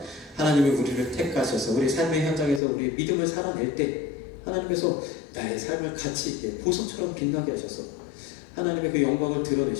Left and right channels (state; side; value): drops out; right; at 2.6 s